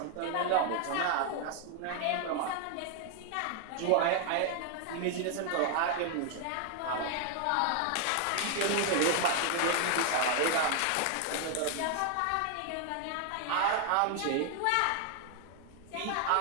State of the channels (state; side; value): different; both; correlation 0.00